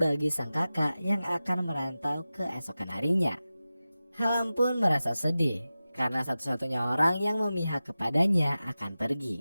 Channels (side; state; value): both; inverted; correlation -0.95